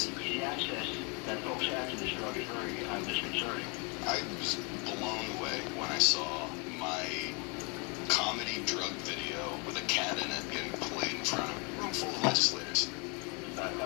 The access that folks have to this drug is very disconcerting. I was blown away when I saw my comedy drug video with a cat in it getting played in front of a room full of legislators. A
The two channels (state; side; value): quieter; right; 32.7 dB